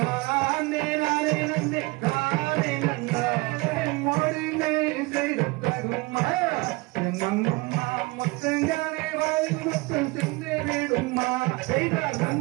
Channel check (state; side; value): quieter; left; 24.4 dB